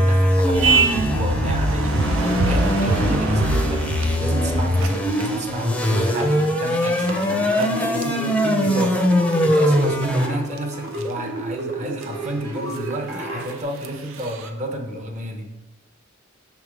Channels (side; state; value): both; normal; correlation 0.65